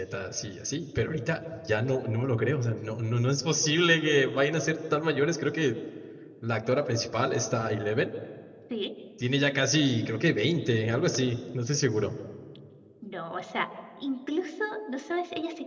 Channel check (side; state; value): both; identical; correlation 1.00